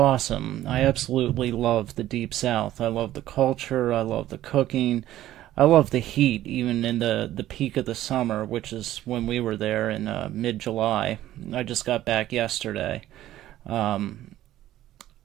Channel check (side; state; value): left; quieter; 13.8 dB